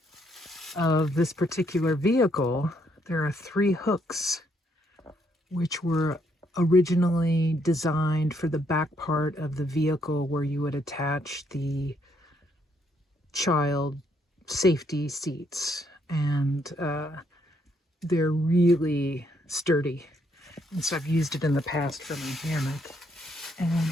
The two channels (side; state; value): both; normal; correlation 0.72